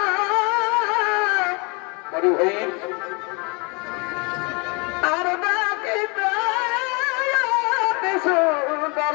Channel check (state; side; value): quieter; right; 30.7 dB